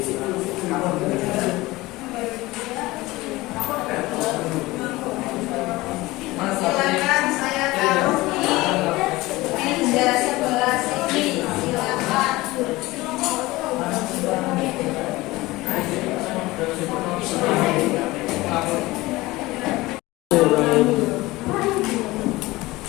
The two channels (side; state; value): right; quieter; 19.9 dB